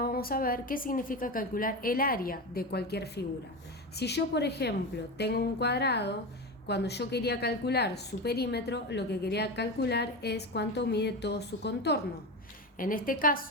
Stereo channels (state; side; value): normal; both; correlation 0.21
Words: vamos a ver qué significa calcular el área de cualquier figura. Si yo, por ejemplo, tengo un cuadrado, cuando yo quería calcular su perímetro, lo que quería calcular es cuánto mide todo su contorno. En este